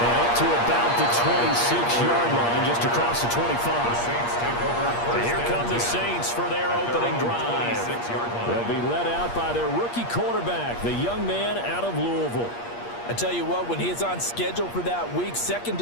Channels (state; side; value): late; right; 8.5 ms